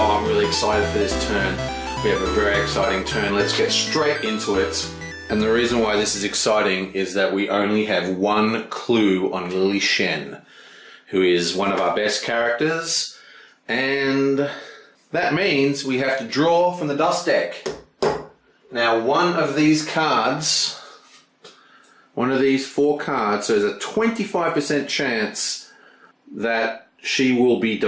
I'm really excited for this turn. We have a very exciting turn. Let's get straight into it. And the reason why this is exciting is that we only have one clue on Lily Shen, who is one of our best characters, and that means we have to draw from the dust deck. Now, one of these cards, one of these 4 cards, so there's a 25% chance that she will be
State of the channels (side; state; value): both; identical; correlation 1.00